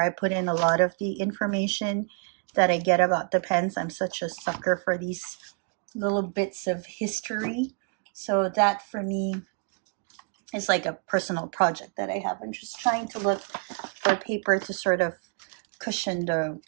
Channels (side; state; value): left; quieter; 37.9 dB